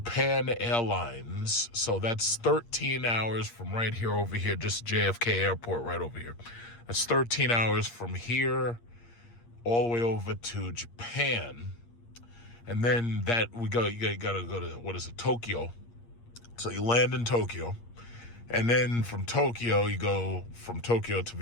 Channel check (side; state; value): right; late; 8.6 ms